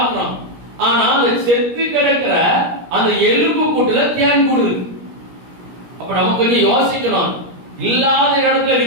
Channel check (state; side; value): late; left; 17 ms